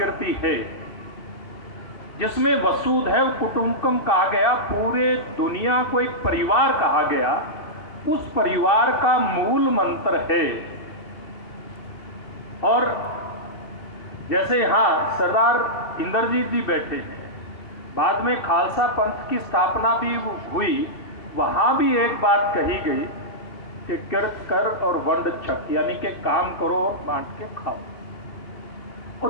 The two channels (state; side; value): late; right; 2.6 ms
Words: है जिसमें वसुधैव कुटुंबकम कहा गया, पूरे दुनिया को एक परिवार कहा गया, उस परिवार का मूल मंत्र है। और जैसे यहाँ सरदार इंद्रजीत जी बैठे हैं, बाद में खालसा पंथ की स्थापना भी हुई, वहाँ भी एक बात कही गई कि किरत कर और वंड छक, यानी कि काम करो और बांट के खाओ।